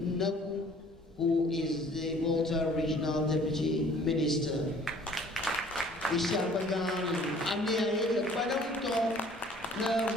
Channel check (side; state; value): both; normal; correlation 0.54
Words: who is the Malta Regional Deputy Minister. Isyapagan amiaya padang to na